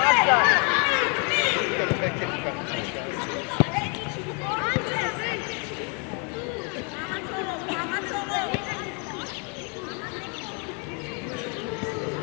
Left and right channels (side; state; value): right; quieter; 35.3 dB